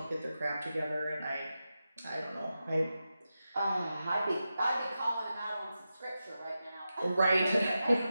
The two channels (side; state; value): both; inverted; correlation -0.91